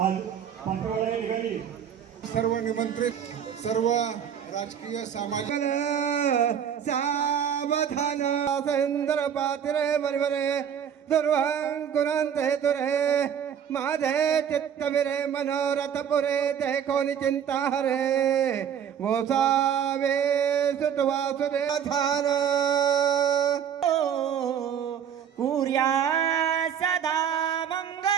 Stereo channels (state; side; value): quieter; left; 8.5 dB